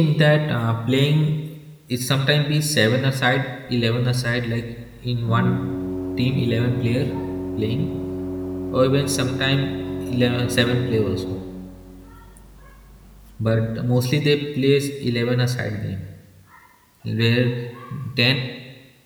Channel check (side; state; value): both; identical; correlation 1.00